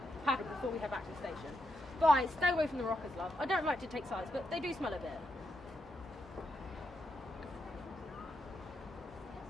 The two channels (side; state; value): both; normal; correlation 0.83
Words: paddle before we head back to the station. Bye, stay away from the rockers, love. I don't like to take sides, but they do smell a bit.